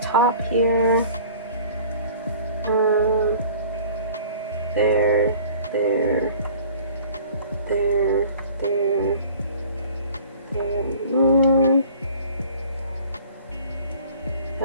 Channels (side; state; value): both; inverted; correlation -0.48